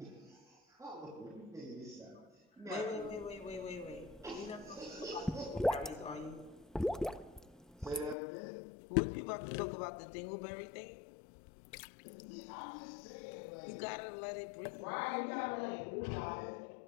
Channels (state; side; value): drops out; right; at 8.2 s